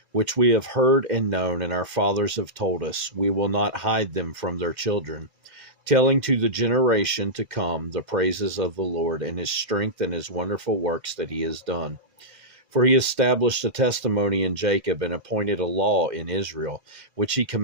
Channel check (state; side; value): late; left; 2.1 ms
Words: which we have heard and known, and our fathers have told us. We will not hide them from their children, telling to the generation to come the praises of the Lord and his strength and his wonderful works that he has done. For he established a testimony in Jacob and appointed a law in Israel, which he